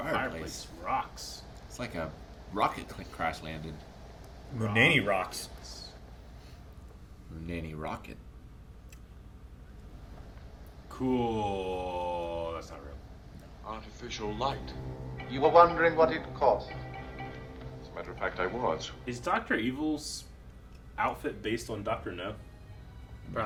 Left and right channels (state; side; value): identical; both; correlation 1.00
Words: fireplace rocks. It's like a rocket crash landed. Munani rocks. Nanny rocket. Cool. That's not real. Artificial light. You were wondering what it cost. As a matter of fact, I was. Is Dr. Evil's outfit based on Dr. No?